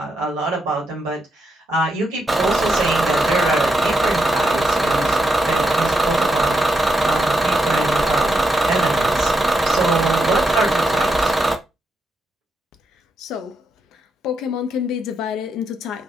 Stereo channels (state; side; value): normal; both; correlation 0.82